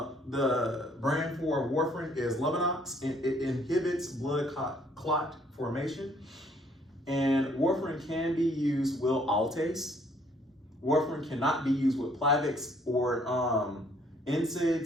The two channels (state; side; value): normal; both; correlation 0.63